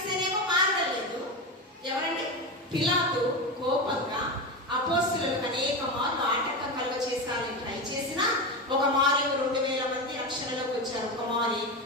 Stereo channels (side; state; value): both; normal; correlation 0.18